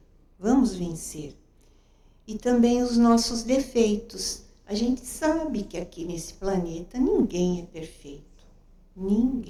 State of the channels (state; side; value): identical; both; correlation 1.00